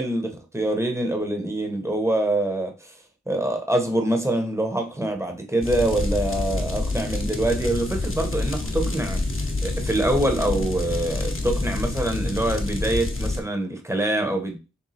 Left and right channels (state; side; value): normal; both; correlation 0.77